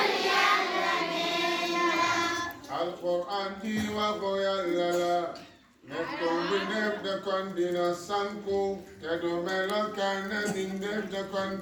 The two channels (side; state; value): both; identical; correlation 1.00